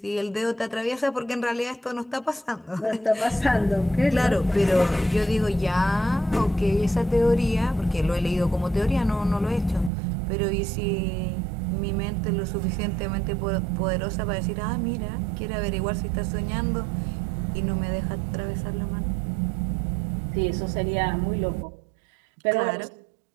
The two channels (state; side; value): drops out; left; at 9.9 s